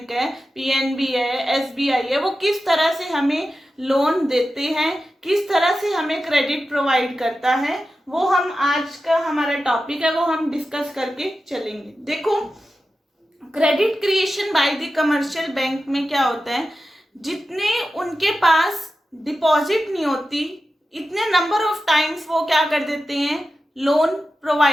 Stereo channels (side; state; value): both; normal; correlation 0.92